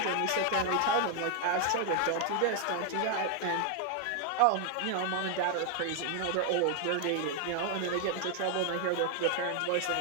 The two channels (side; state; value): both; different; correlation 0.00